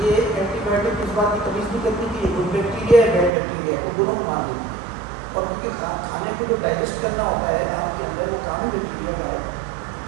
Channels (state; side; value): drops out; left; at 3.3 s